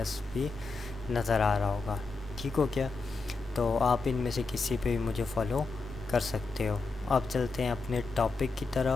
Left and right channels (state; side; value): quieter; right; 3.9 dB